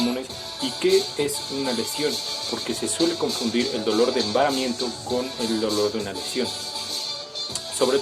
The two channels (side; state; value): both; identical; correlation 1.00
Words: y qué es una lesión? Porque se suele confundir el dolor de embaramiento con el dolor de una lesión. Sobre